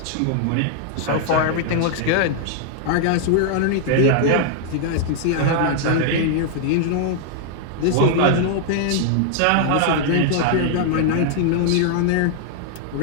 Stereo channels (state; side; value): different; both; correlation 0.00